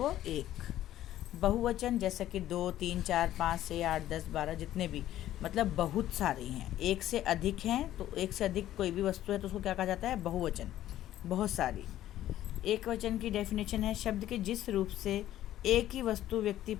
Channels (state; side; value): quieter; right; 13.1 dB